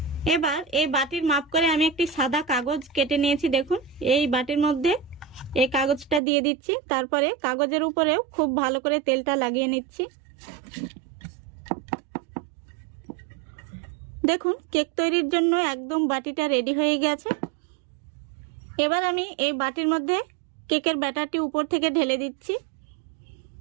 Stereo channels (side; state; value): left; drops out; at 6.2 s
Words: এবার এই বাটির মাপ করে আমি একটি সাদা কাগজ কেটে নিয়েছি। দেখুন এই বাটির মধ্যে এই কাগজটা দিয়ে দিচ্ছি। তারপরে কাগজের উপরেও খুব ভালো করে তেলটা লাগিয়ে নিচ্ছি। দেখুন কেক তৈরির জন্য একদম বাটিটা রেডি হয়ে গেছে। এবার আমি এই বাটির মধ্যে কেকের ব্যাটারটি উপর থেকে ঢেলে দিচ্ছি।